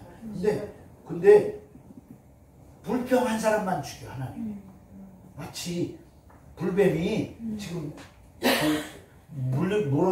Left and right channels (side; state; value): both; identical; correlation 1.00